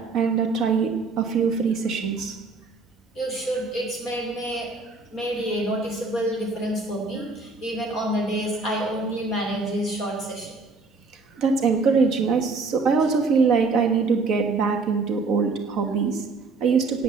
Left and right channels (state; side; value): quieter; left; 3.9 dB